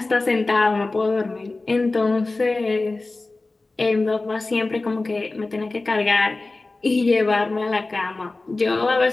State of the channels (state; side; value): quieter; right; 3.3 dB